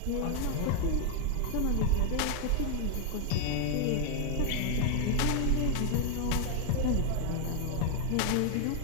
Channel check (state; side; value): different; both; correlation 0.00